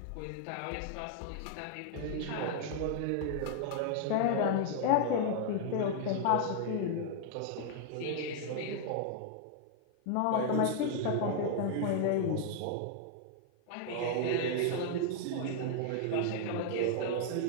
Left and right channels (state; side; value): different; both; correlation 0.00